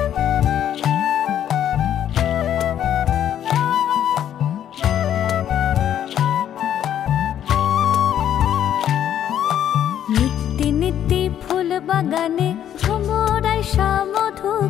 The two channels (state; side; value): quieter; right; 10.4 dB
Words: নিত্যি নিত্যি ফুল বাগানে ভ্রমরায় মধু